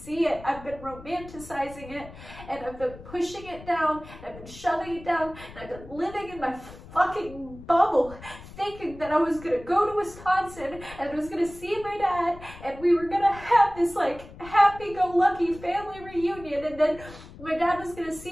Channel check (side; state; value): left; noise; rumble, 17 dB below the sound